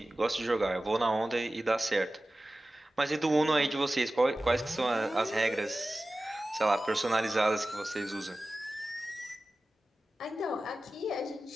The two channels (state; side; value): normal; both; correlation 0.96